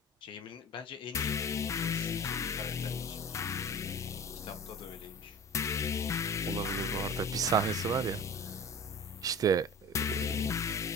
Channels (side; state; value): both; normal; correlation 0.36